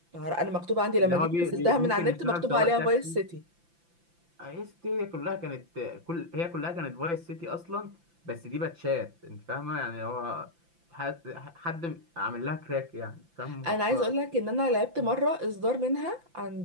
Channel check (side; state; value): left; late; 5.9 ms